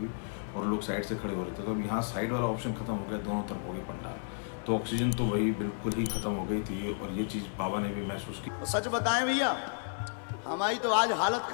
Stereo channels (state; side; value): silent; right; digital silence